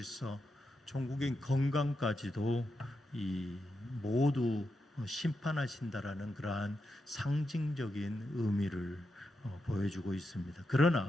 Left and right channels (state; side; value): normal; both; correlation 0.86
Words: 종국의 건강까지도 이 모두 심판하신다라는 그러한 상징적인 의미를 보여주고 있습니다.